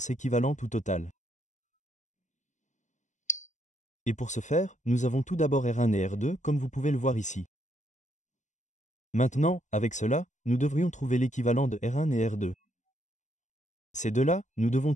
équivalente ou totale. Et pour ce faire, nous avons tout d'abord R1 et R2 comme vous pouvez le voir ici. Maintenant, avec cela, nous devrions trouver l'équivalent de R1 et R2. Ces deux-là, nous devons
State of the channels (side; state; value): right; late; 0.35 ms